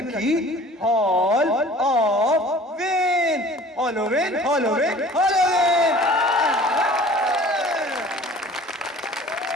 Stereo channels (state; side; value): normal; both; correlation 0.47